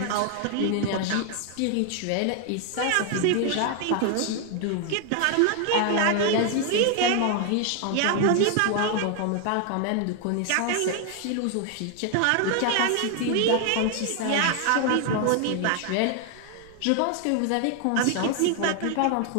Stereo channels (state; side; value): different; both; correlation 0.00